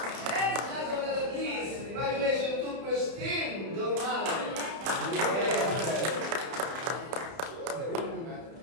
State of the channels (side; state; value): left; late; 31 ms